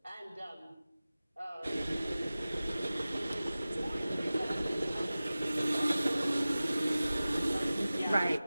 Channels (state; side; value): inverted; both; correlation -0.96